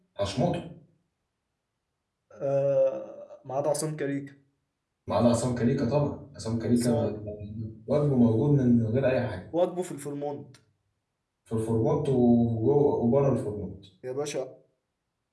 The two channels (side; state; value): both; identical; correlation 1.00